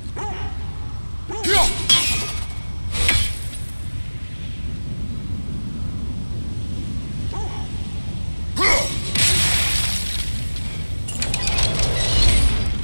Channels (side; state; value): both; inverted; correlation -1.00